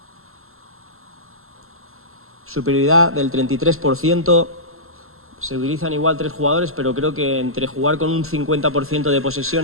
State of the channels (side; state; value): left; late; 0.62 ms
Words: superioridad del 33%, se utilizan igual 3 jugadores, pero creo que entre jugar con un 50% de